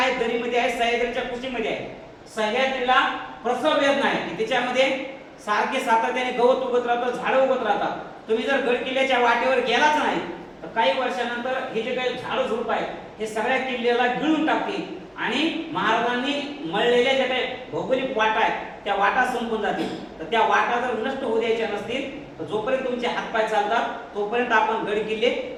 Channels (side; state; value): both; identical; correlation 1.00